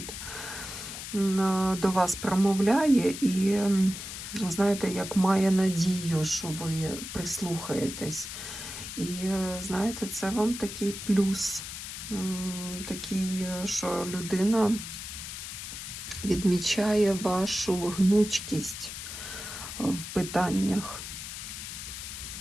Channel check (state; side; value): noise; left; hiss, 8 dB below the sound